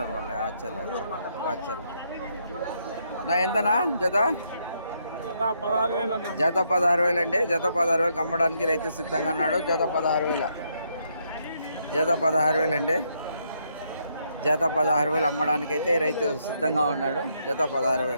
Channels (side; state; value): both; inverted; correlation -0.75